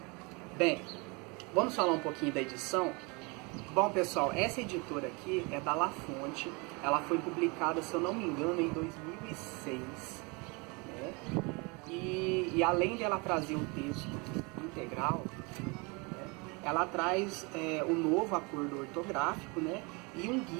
Bem, vamos falar um pouquinho da edição? Bom, pessoal, essa editora aqui é da La Fonte, ela foi publicada, se eu não me engano, em 2006, né? E além dela trazer o texto integral, né, ela traz um novo acordo ortográfico, né, e um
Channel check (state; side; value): quieter; left; 29.2 dB